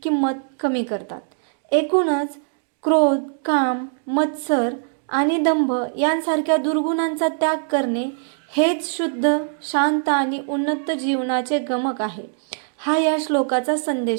किंमत कमी करतात। एकूणच क्रोध, काम, मत्सर आणि दंभ यांसारख्या दुर्गुणांचा त्याग करणे हेच शुद्ध, शांत आणि उन्नत जीवनाचे गमक आहे। हा या श्लोकाचा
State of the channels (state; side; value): silent; left; digital silence